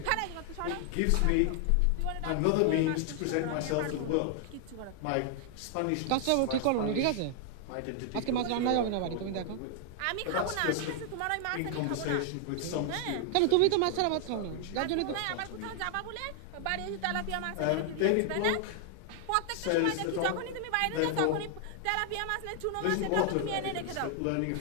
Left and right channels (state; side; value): different; both; correlation 0.00